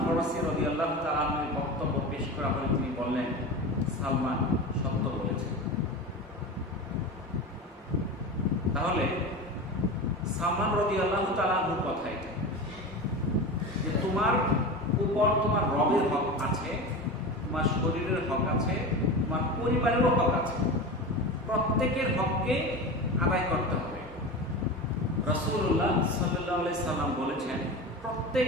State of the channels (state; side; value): normal; both; correlation 0.27